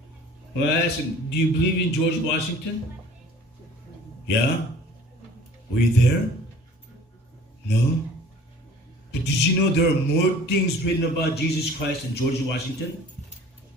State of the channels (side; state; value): both; normal; correlation 0.49